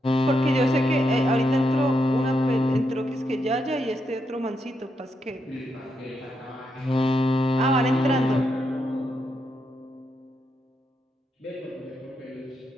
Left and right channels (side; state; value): both; normal; correlation 0.82